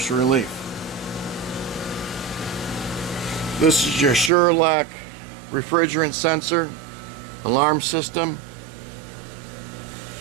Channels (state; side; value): drops out; left; at 4.3 s